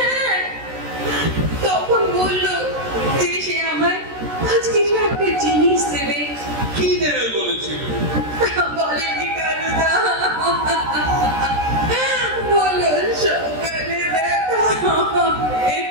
তখন বললো যে সে আমার আজ কিছু একটা জিনিস দেবে। কি দেবে বলেছিল? বলেনি কানুদা, বলো সকালে দেখা হবে।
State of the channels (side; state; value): left; late; 13 ms